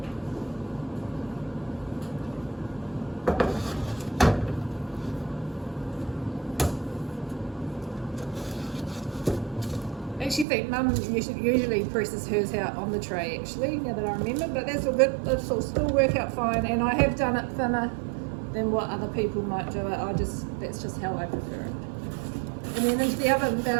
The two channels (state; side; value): drops out; left; at 10.5 s